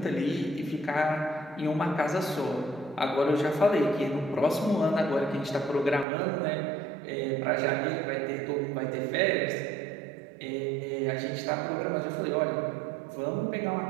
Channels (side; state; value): left; drops out; at 6.1 s